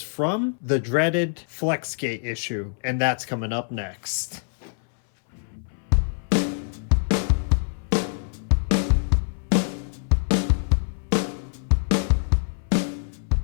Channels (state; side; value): silent; right; 62 dB below the other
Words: from the dreaded Flexgate issue, and that's coming up next.